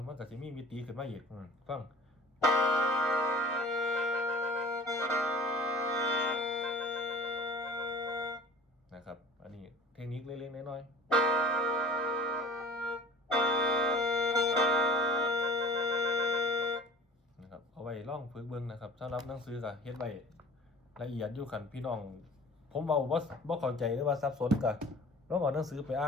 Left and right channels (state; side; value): normal; both; correlation 0.44